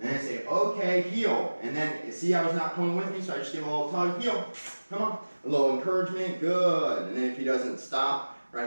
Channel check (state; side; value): inverted; both; correlation -1.00